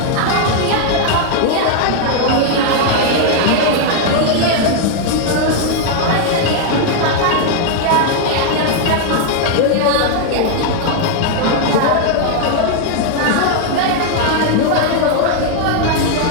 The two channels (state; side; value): different; both; correlation 0.00